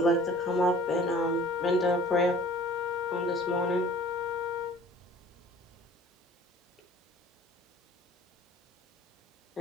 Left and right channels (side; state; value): both; normal; correlation 0.49